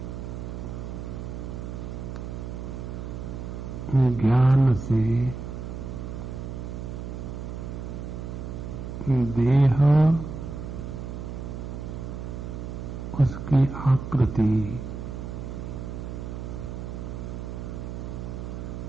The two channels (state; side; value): noise; right; hum, 7 dB below the sound